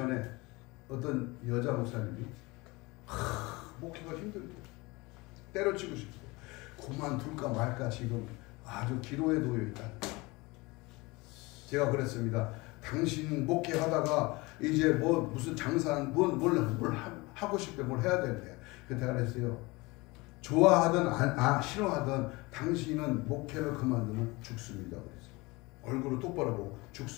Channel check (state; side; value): quieter; right; 23.7 dB